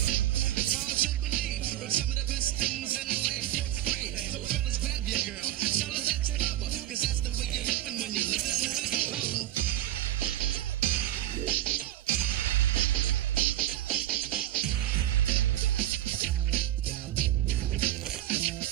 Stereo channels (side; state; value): left; quieter; 13.5 dB